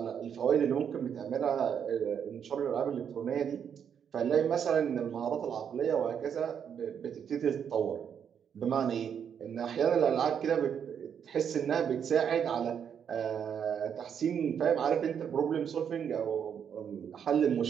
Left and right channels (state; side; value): quieter; left; 7.9 dB